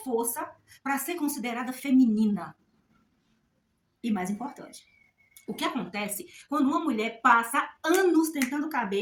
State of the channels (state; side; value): identical; both; correlation 1.00